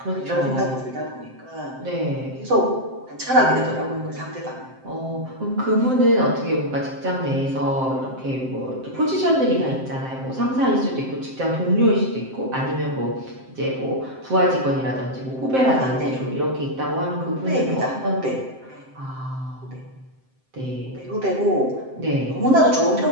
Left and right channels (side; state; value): left; late; 7.7 ms